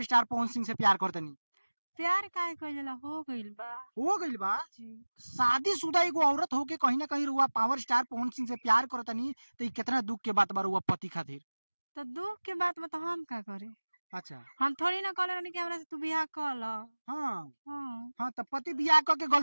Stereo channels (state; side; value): inverted; both; correlation -1.00